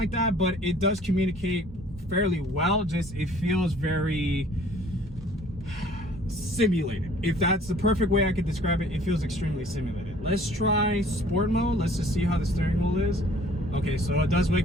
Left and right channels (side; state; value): both; normal; correlation 0.54